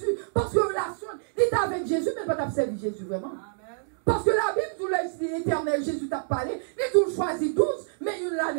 Parce que relation, il est avec Jésus, mais pas servi Jésus vraiment. Amen. Parce que la Bible, tout l'éternel Jésus t'a parlé, il tout choisi 12, mais il a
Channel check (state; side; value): silent; left; digital silence